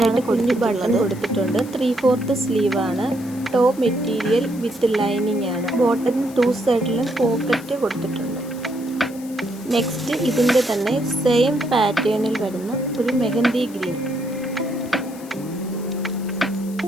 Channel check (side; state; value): left; noise; hiss, 20 dB below the sound